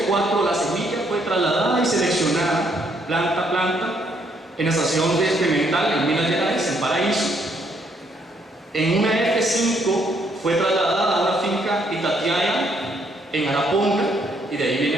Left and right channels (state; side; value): normal; both; correlation 0.70